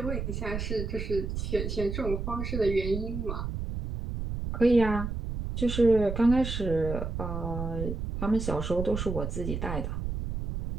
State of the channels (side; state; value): right; noise; rumble, 4 dB below the sound